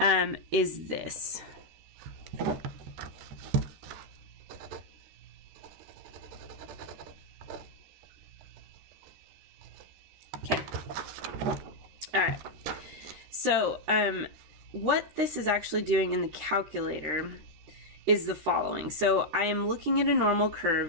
is this. Okay, all right. So what this is actually doing in the calculator is the following. So I am looking at a normal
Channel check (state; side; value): late; left; 13 ms